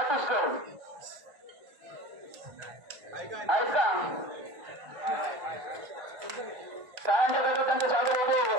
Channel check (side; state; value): left; late; 1.8 ms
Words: आहेत का? शाळांच्या गटात त्यांचं स्वागत होतो.